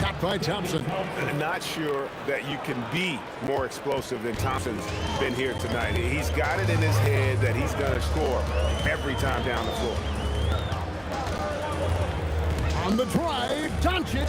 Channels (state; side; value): identical; both; correlation 1.00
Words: by Thompson. Not sure that you can be more explosive than Thompson's been here tonight. He's got it in his head that he's going to score every time down the floor. On the drive, Doncic.